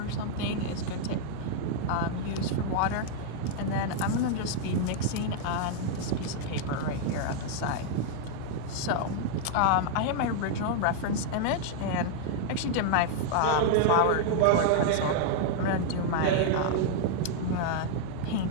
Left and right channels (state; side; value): different; both; correlation 0.00